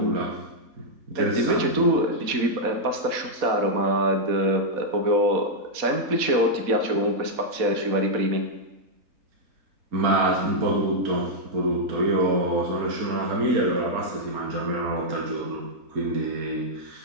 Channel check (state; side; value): late; left; 4.1 ms